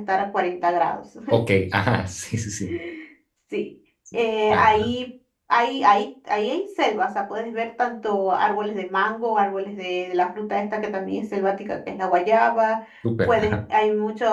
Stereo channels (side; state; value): both; identical; correlation 1.00